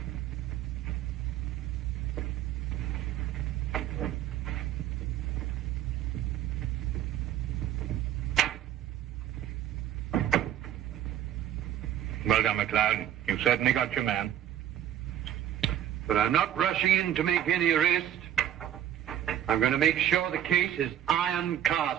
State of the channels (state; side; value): quieter; left; 11.0 dB